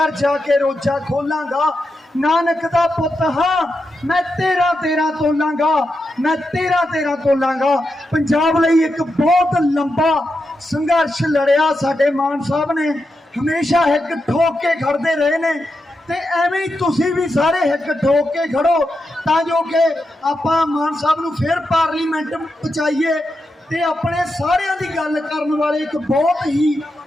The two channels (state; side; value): normal; both; correlation 0.87